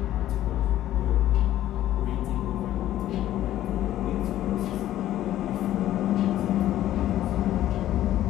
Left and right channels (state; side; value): quieter; right; 13.1 dB